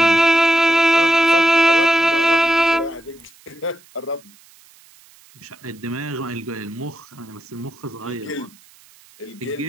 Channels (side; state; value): right; noise; hiss, 27 dB below the sound